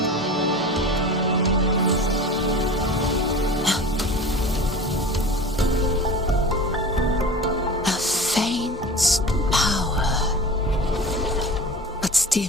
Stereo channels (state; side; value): normal; both; correlation 0.35